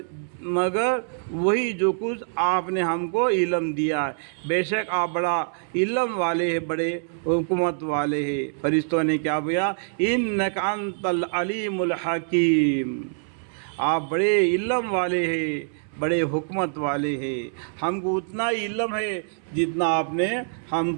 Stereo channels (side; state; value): left; silent; 62 dB below the other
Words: مگر وہی جو کچھ آپ نے ہم کو علم دیا ہے، بے شک آپ بڑا علم والے ہیں، بڑے حکمت والے ہیں۔ فرشتوں نے کیا بولا؟ انک انت العلیم الحکیم، آپ بڑے علم والے ہیں، بڑے حکمت والے ہیں، ہم کو اتنا ہی علم ہے جتنا آپ نے ہم